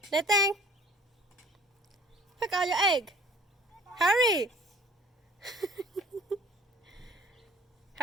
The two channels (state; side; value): normal; both; correlation 0.51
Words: Anything? Pick out your egg. Hurry.